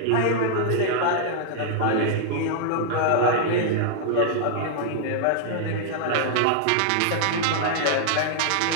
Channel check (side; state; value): both; different; correlation -0.01